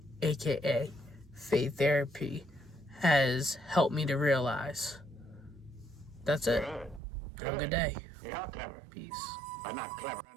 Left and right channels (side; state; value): left; drops out; at 7.0 s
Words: aka Faith Therapy, has helped me to realize. That's it. Have a good day. You're clever. Peace. But not clever